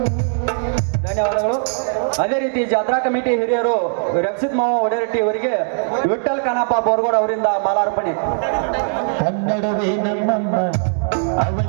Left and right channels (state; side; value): silent; left; digital silence